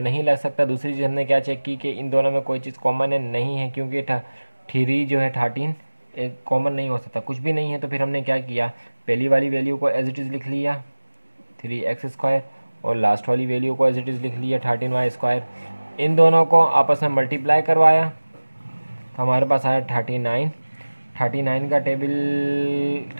नहीं लग सकता। दूसरी चीज़ हमने क्या चेक की कि इन दोनों में कोई चीज़ कॉमन है, नहीं है, क्योंकि 3 जो है 13 एक कॉमन नहीं हो सकता, कुछ भी नहीं है। तो फिर हमने क्या किया, पहली वाली वैल्यू को एज इट इज़ लिख लिया 3x², और लास्ट वाली वैल्यू को एज इट इज़ लिख लिया 13y²। इन दोनों को आपस में मल्टीप्लाई करवाया तो हमारे पास आया 39। 39 का टेबल,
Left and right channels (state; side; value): inverted; both; correlation -1.00